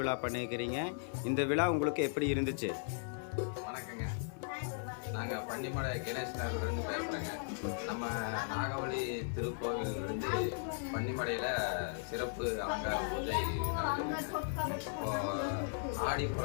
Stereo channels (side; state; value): right; silent; 53 dB below the other